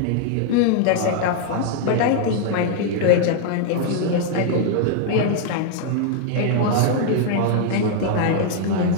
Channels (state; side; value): different; both; correlation 0.00